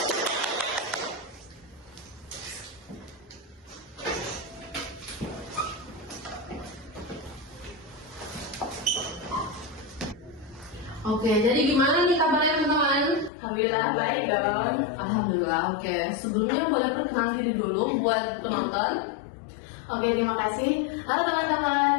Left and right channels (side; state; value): right; drops out; at 13.3 s